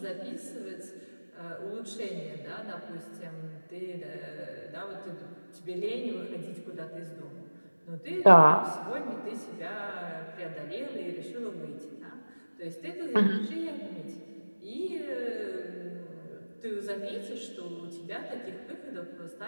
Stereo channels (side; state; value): both; inverted; correlation -1.00